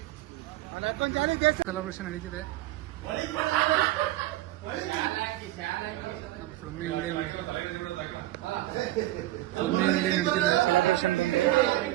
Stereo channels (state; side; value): quieter; left; 16.2 dB